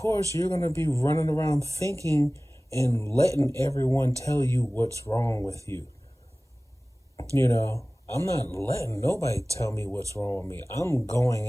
you're going to be running around thinking and letting everyone tell you what's wrong with you. I'm not letting nobody tell me what's wrong with me. I'm going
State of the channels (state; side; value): normal; both; correlation 0.98